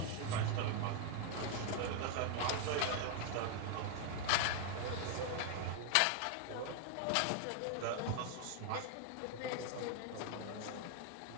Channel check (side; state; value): both; different; correlation 0.00